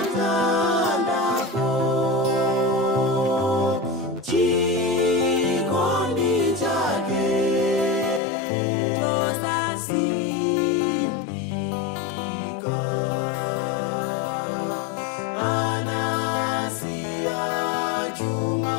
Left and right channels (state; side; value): drops out; right; at 8.2 s